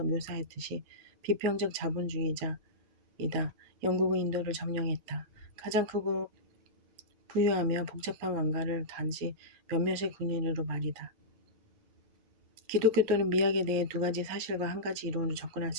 묘사했듯이 비평적 자본주의자이다. 영국은 인도를 점령했다. 가장 크고 부유하며 복잡한 왕가를 단지 몇몇의 군인으로 말이다. 기독교 또는 미학에 대해 두 가지 사실과 한 가지 이론으로 접근할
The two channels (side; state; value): left; late; 9.7 ms